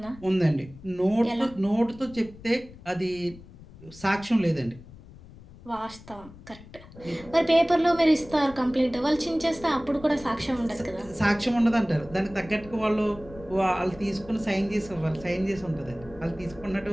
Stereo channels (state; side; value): noise; left; rumble, 19 dB below the sound